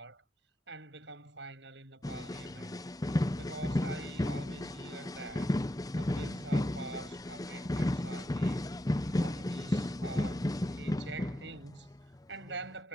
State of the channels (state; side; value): normal; both; correlation 0.85